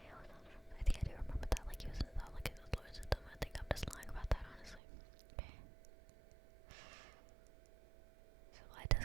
think I do remember that. Like, he was in the like his lawyers and them. I think I'm just lying about that, honestly. Okay. So why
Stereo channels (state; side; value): drops out; left; at 4.8 s